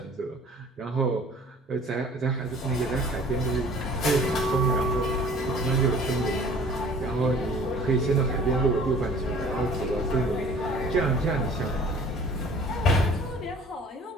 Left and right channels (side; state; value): both; normal; correlation 0.50